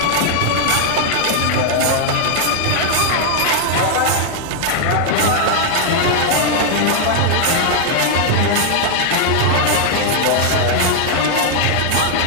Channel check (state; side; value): different; both; correlation 0.00